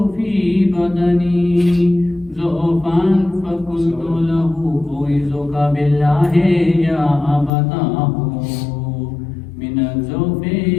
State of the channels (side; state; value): right; drops out; at 7.5 s